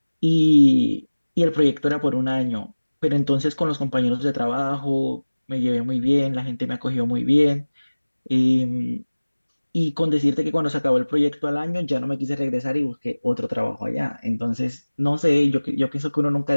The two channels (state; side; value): inverted; both; correlation -1.00